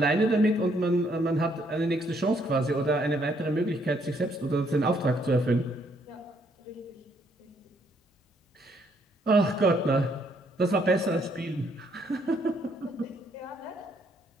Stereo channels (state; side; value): normal; both; correlation 0.69